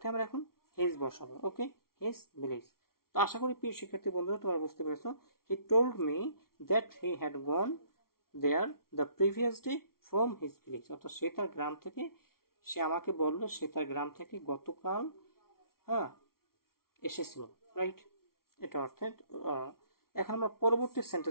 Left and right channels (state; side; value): late; right; 0.93 ms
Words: আমরা এখন হিজ বসাবো। Okay, his village. তো আশা করি প্রিয় শিক্ষার্থী বন্ধুরা তোমরা বুঝতে পেরেছো। He told me that he had gone there the previous day from his village, অর্থাৎ সে তার গ্রাম থেকে, সে আমাকে বললো সে তার গ্রাম থেকে গতকাল, হ্যাঁ, এসেছিল, রাইট? এটা অর্থে এখন আমরা পরবর্তী